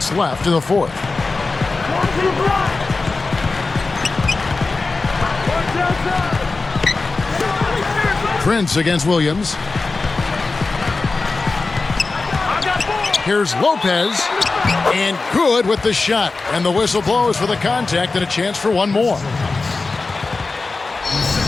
left in the fourth. Prince against Williams. Here's Lopez. And good with the shot. And the whistle blows for the contact and a chance for one more.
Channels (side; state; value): right; quieter; 3.8 dB